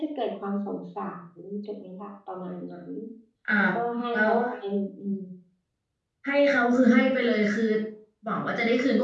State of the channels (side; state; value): both; identical; correlation 1.00